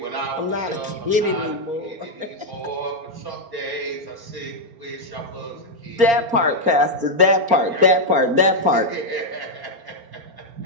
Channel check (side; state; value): left; late; 4.3 ms